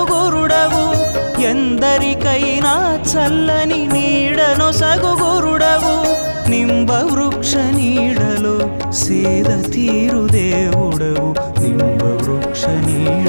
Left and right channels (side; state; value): both; inverted; correlation -1.00